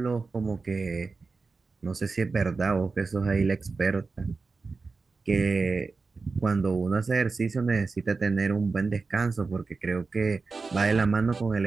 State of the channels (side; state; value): left; quieter; 4.2 dB